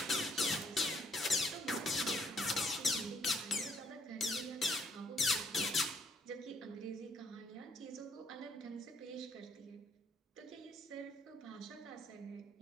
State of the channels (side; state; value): both; normal; correlation 0.68